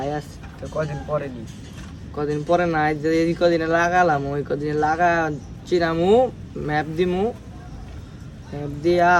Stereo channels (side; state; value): both; identical; correlation 1.00